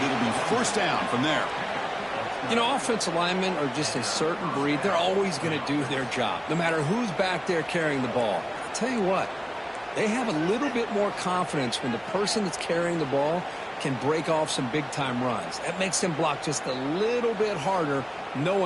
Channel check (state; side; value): identical; both; correlation 1.00